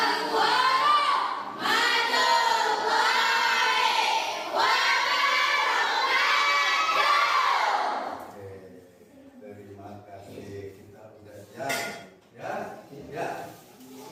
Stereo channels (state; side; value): identical; both; correlation 1.00